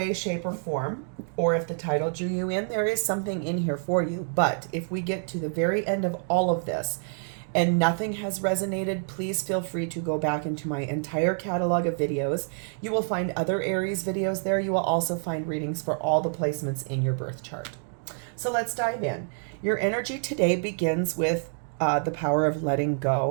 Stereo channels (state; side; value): silent; left; digital silence